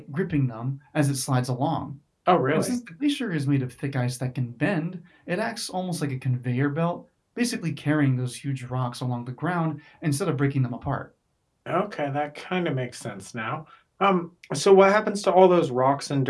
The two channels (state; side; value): identical; both; correlation 1.00